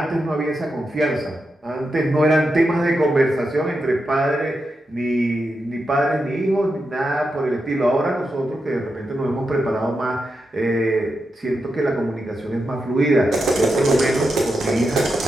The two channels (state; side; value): normal; both; correlation 0.87